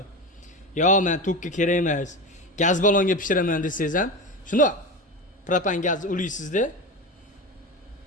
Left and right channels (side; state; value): both; normal; correlation 0.24